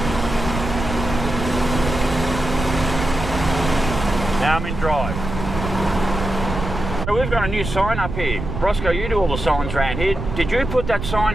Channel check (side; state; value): right; noise; rumble, 6 dB below the sound